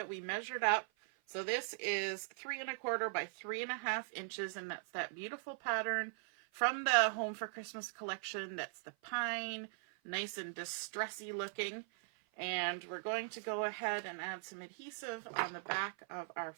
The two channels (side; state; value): left; silent; 51 dB below the other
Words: we measured up. So this is 3 1/4 by 3 1/2 inches, and that's that beautiful pattern from the Home for Christmas collection. That's the pine, nice and distressy looking. And we're going to go ahead and add some adhesive on the back of our